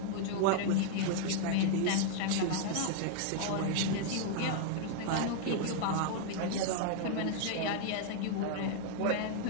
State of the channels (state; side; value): different; both; correlation 0.00